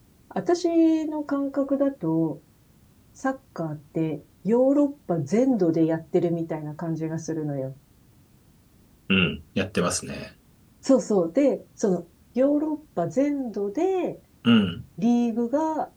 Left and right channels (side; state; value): both; identical; correlation 1.00